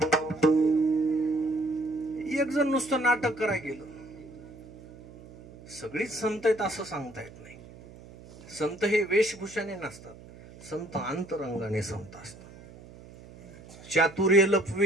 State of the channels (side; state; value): right; noise; hum, 19 dB below the sound